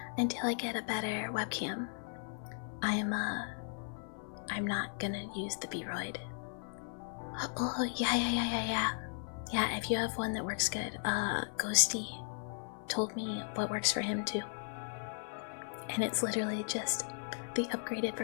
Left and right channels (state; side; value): silent; right; 53 dB below the other